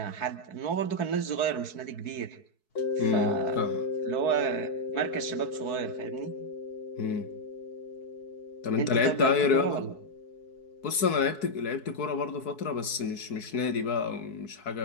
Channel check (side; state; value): right; late; 4.6 ms